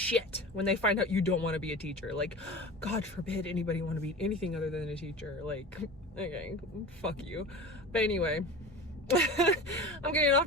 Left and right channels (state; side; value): normal; both; correlation 0.33